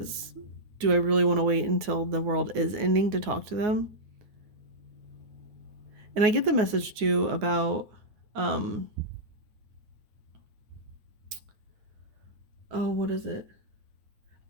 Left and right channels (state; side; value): late; left; 9.5 ms